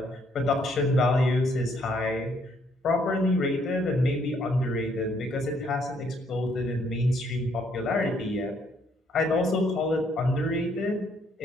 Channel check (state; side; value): normal; both; correlation 0.69